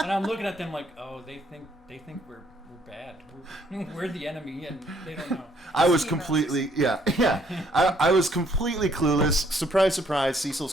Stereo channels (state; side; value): normal; both; correlation 0.66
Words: I'm looking at them like, oh, they think we're bad. We're the enemy, and they don't know. I was completely, I was completely clueless. Surprise, surprise.